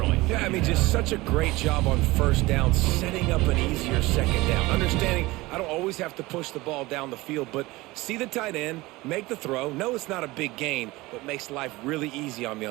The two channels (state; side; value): quieter; left; 20.7 dB